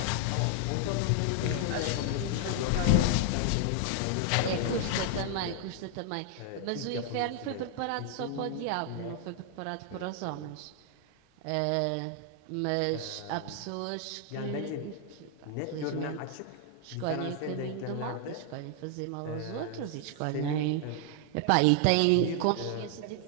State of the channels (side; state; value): both; different; correlation 0.00